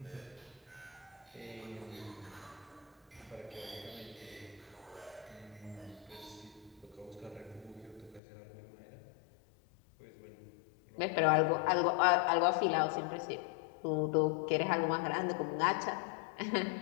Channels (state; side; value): drops out; right; at 8.2 s